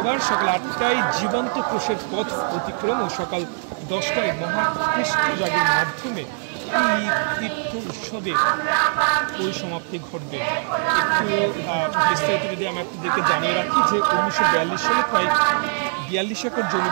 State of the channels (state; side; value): silent; left; digital silence